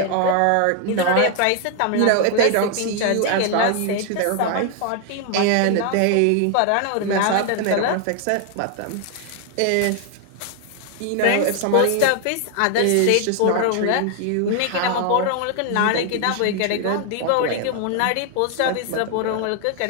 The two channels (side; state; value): both; different; correlation 0.00